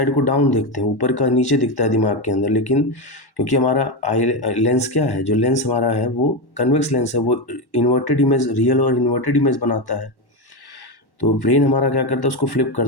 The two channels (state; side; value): late; right; 1.1 ms